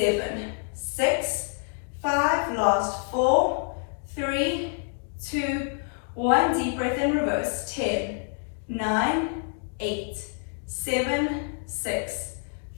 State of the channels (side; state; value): right; silent; 56 dB below the other